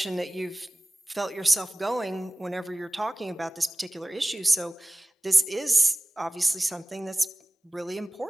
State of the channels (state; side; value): normal; both; correlation 0.97